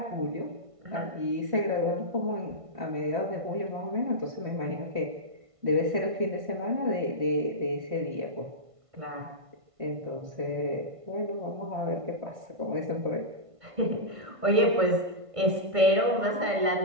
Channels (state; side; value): late; left; 1.5 ms